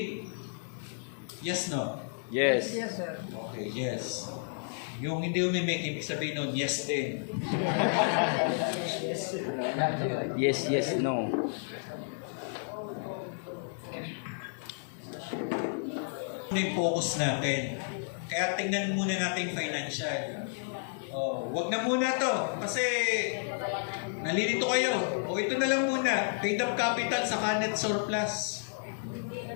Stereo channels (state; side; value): silent; right; digital silence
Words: Yes, no? Yes. Yes, sir. Okay, yes. Yung hindi umimik, ibig sabihin nun, yes din. Yes, yes, no. Ano yung focus natin? Kaya tingnan muna natin financial. Oh, wag na muna to kasi nalilito kayo. O ito na lang muna, paid up capital sa net surplus.